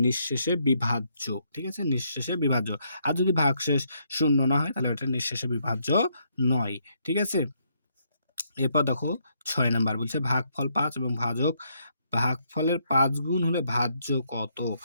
নিঃশেষে বিভাজ্য, ঠিক আছে? নিঃশেষে বিভাজ্য। আর যদি ভাগশেষ 0 না হয়, তাহলে ওটা নিঃশেষে বিভাজ্য নয়, ঠিক আছে? এরপর দেখো 6 নাম্বার বলছে ভাগফল 5 এবং ভাগফলের 5 গুণ হলে ভাজ্য কত,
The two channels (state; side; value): inverted; both; correlation -0.74